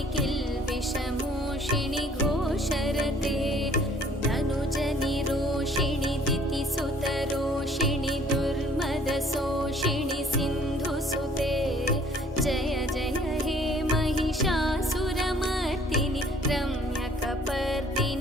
किल्बिषमोषिणि घोषरते धनुजनिरोषिणि दितिसुतरोषिणि दुर्मदशोषिणि सिन्धुसुते जय जय हे महिषासुरमर्दिनि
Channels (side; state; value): both; normal; correlation 0.57